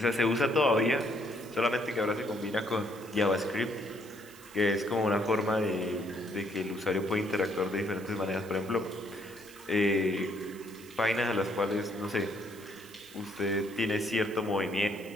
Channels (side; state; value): right; noise; hiss, 21 dB below the sound